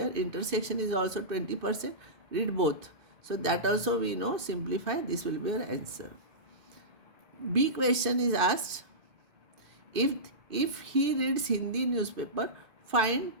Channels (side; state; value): left; late; 2.5 ms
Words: Intersection is also 20%. Read both. So that also we know. Simplify. This will be your answer. B question is asked. If he reads Hindi newspaper, find